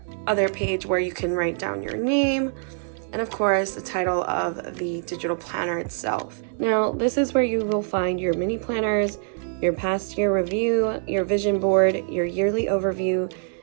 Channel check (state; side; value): silent; left; digital silence